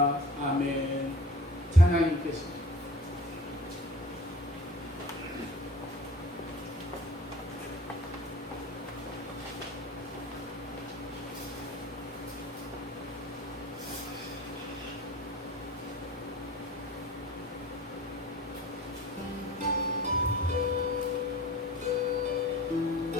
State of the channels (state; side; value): normal; both; correlation 0.43